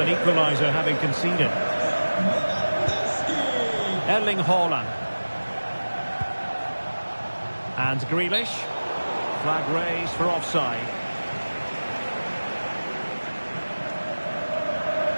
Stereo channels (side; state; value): both; inverted; correlation -1.00